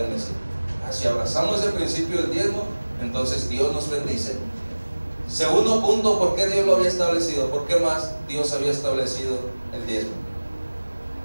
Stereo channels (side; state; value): both; inverted; correlation -1.00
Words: bendecir. Si abrazamos ese principio del diezmo, entonces Dios nos bendice. Segundo punto, ¿por qué Dios lo había establecido? ¿Por qué más Dios había establecido el diezmo?